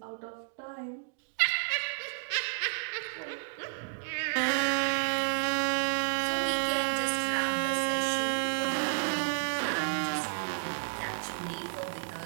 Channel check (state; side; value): silent; left; digital silence